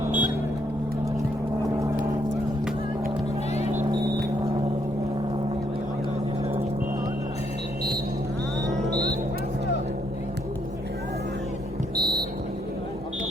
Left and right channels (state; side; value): normal; both; correlation 0.72